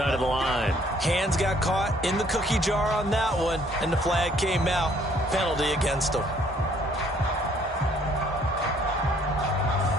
of the line. Hands got caught in the cookie jar on that one, and the flag came out. Penalty against them.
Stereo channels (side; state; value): both; normal; correlation 0.62